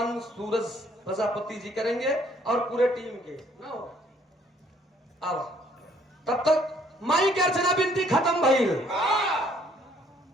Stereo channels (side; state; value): both; normal; correlation 0.63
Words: सूरज प्रजापति जी करेंगे और पूरे टीम के ना हो। अब तब तक माई के अर्चना बिनती खत्म भइल,